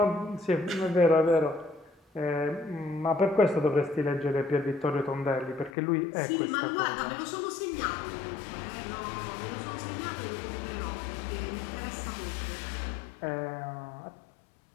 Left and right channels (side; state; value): right; drops out; at 5.7 s